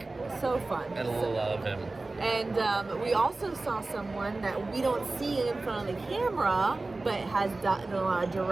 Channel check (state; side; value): quieter; left; 3.2 dB